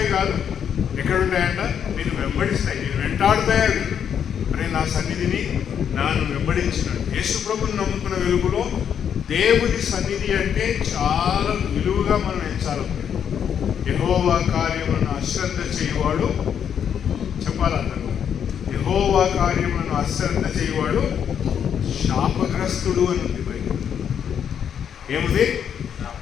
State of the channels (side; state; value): right; quieter; 8.3 dB